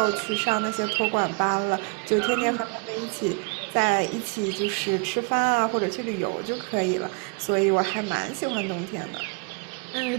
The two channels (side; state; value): left; quieter; 34.0 dB